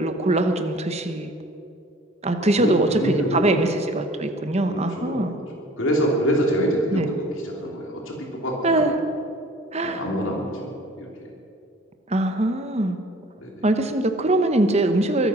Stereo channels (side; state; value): both; normal; correlation 0.49